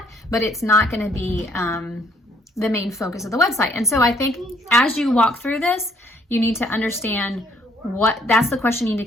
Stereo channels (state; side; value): normal; both; correlation 0.65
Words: but it's not going to be the main focus of the website. And so I think as you walk through this, you need to understand that's the question you need